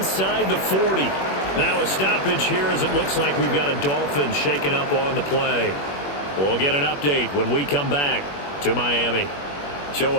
the 40. Now a stoppage here as it looks like we've got a Dolphin shaken up on the play. We'll get an update when we come back to Miami. So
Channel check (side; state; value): right; late; 21 ms